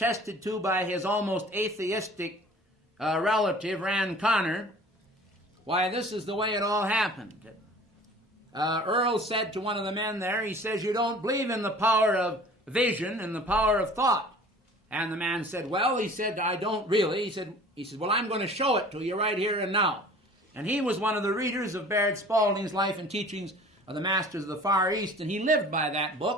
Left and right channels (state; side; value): normal; both; correlation 0.46